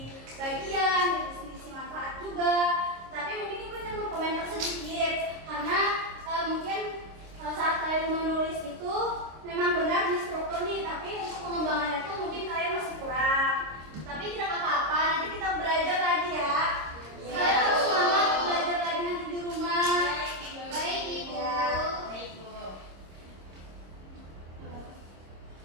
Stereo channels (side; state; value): left; late; 26 ms